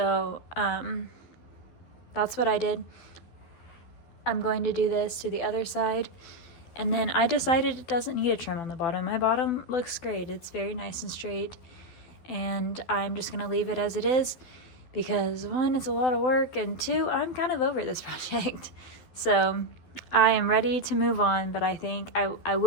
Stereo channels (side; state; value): right; late; 12 ms